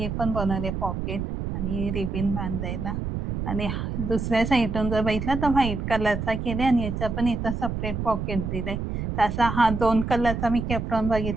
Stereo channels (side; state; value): right; noise; rumble, 3 dB below the sound